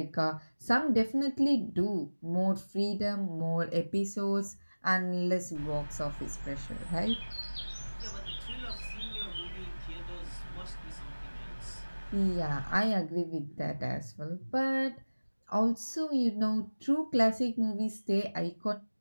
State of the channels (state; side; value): inverted; both; correlation -1.00